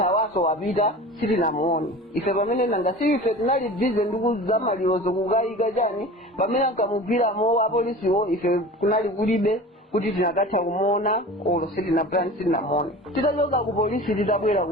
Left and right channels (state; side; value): normal; both; correlation 0.36